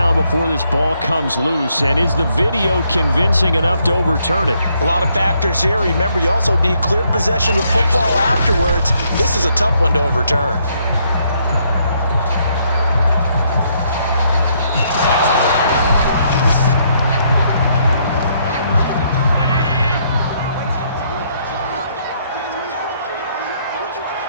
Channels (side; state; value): both; inverted; correlation -0.72